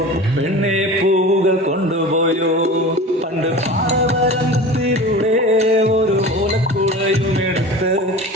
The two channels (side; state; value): both; normal; correlation 0.35